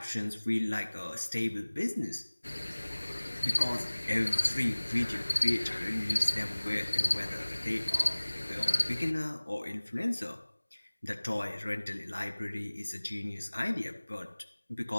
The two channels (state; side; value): inverted; both; correlation -1.00